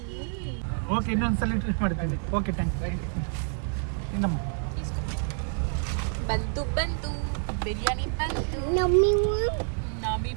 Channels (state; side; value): silent; left; 55 dB below the other